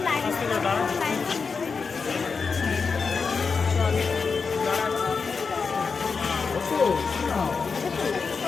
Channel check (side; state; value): right; quieter; 5.1 dB